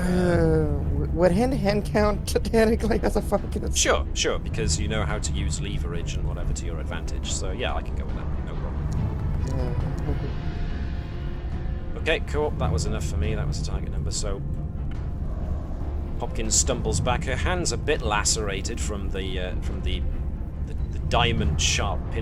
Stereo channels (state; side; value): identical; both; correlation 1.00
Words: Would hand-to-hand count technically as a fucking... Sure, because you know how to use leverage and whatever to your advantage, so yeah, I can go with that, no problem. Okay, cool, that was enough for me, that was the target number, so... Hopkins stumbles back, her hand's a bit lacerated from the diamond-sharp